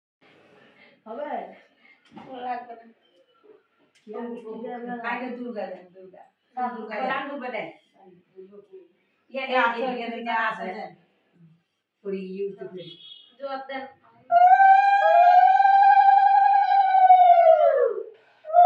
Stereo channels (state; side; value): identical; both; correlation 1.00